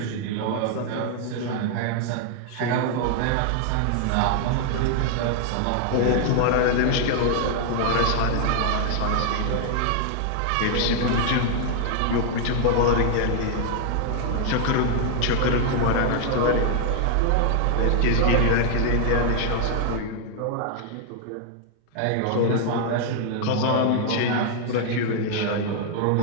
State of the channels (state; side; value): different; both; correlation 0.00